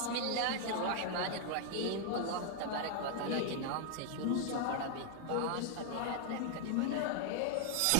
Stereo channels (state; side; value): different; both; correlation 0.00